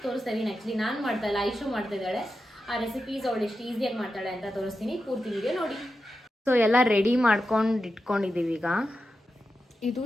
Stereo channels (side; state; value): both; normal; correlation 0.90